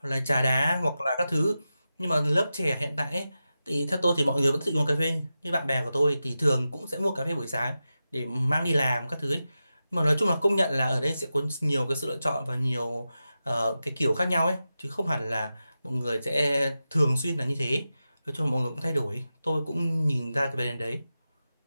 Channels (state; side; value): inverted; both; correlation -0.92